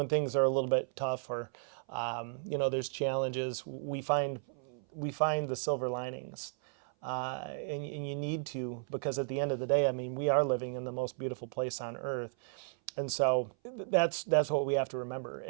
things are a little bit tough or, there's challenges, we find the silver linings. And you need to, because at the end of the day, we are living in the most beautiful place on earth. And so that's what we have to remember.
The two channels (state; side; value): silent; left; 55 dB below the other